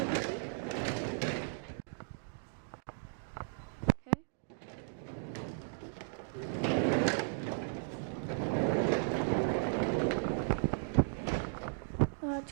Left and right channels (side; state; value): left; silent; digital silence